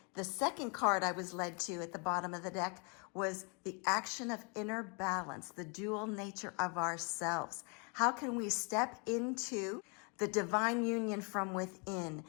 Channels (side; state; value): right; quieter; 34.7 dB